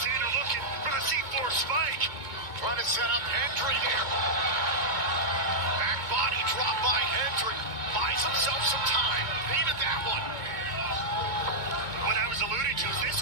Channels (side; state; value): left; late; 2.2 ms